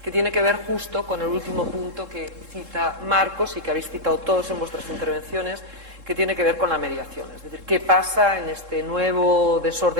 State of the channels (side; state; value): left; late; 3.7 ms